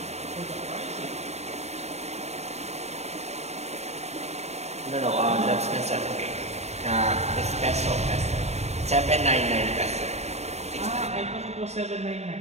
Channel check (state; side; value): late; left; 0.32 ms